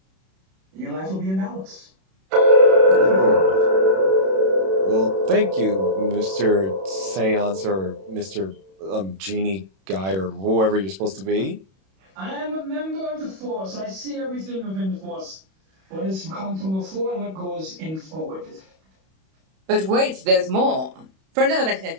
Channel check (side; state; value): left; late; 31 ms